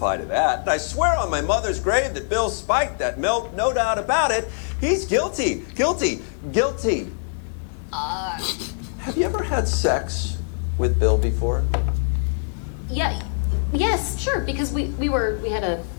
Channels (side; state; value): right; silent; digital silence